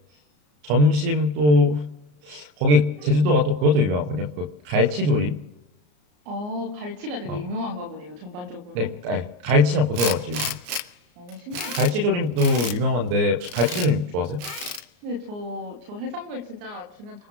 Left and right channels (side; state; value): left; late; 34 ms